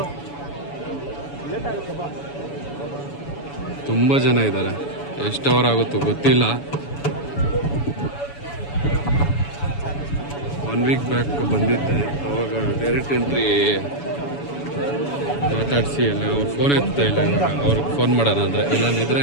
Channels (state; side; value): late; right; 7.0 ms